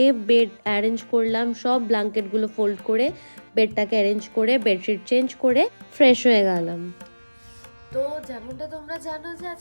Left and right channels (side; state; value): both; inverted; correlation -1.00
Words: বেড অ্যারেঞ্জ করলাম, সব ব্ল্যাঙ্কেটগুলো ফোল্ড করে বেডটাকে অ্যারেঞ্জ করে বেডশিট চেঞ্জ করে ফ্রেশ হয়ে গেলাম। তো যেমনটা তোমরা জানো যে